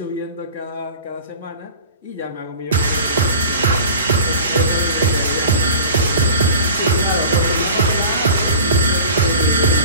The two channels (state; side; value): inverted; both; correlation -0.40